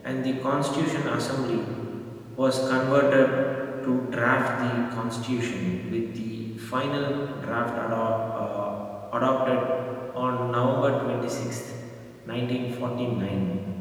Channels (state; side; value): identical; both; correlation 1.00